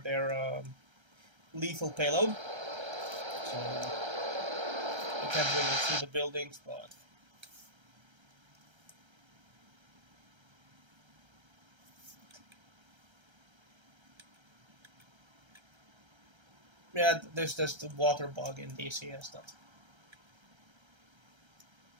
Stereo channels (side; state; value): left; late; 1.3 ms